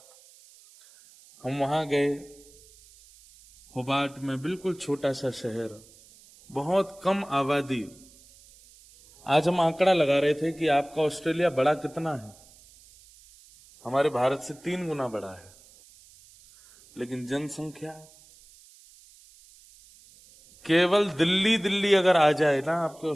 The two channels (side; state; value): right; noise; hiss, 25 dB below the sound